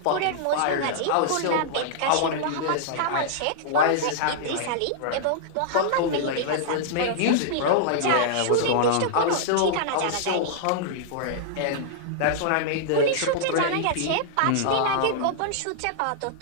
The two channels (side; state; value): both; different; correlation -0.01